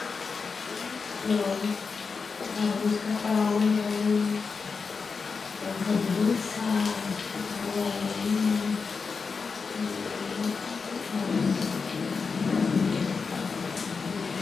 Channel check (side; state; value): right; quieter; 5.0 dB